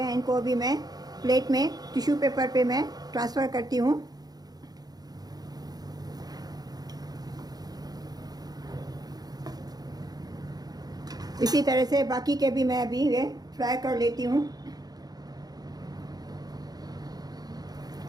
इनको अभी मैं प्लेट में टिश्यू पेपर पे मैं ट्रांसफ़र करती हूँ। इसी तरह से बाकी के भी मैं अभी ये फ्राई कर लेती हूँ।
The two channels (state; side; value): late; left; 0.19 ms